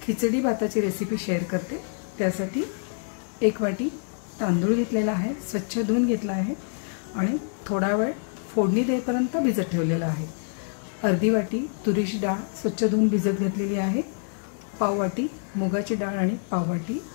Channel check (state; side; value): silent; right; 61 dB below the other